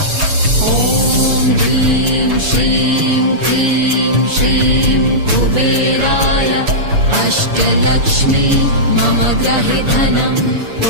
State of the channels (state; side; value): late; left; 7.0 ms